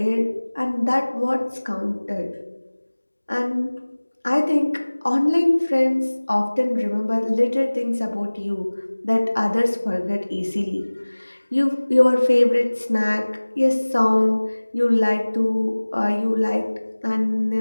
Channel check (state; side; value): inverted; both; correlation -1.00